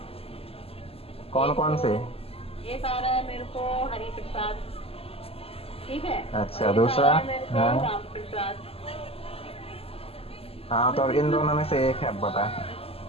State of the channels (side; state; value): right; late; 0.28 ms